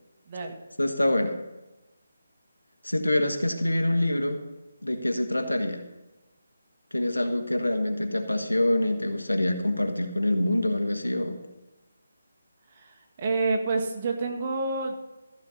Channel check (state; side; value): inverted; both; correlation -0.93